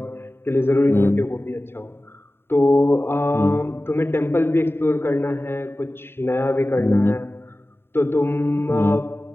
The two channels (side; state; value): right; late; 0.11 ms